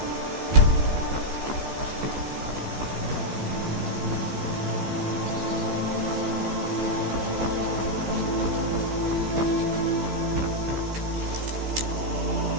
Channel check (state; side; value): late; left; 15 ms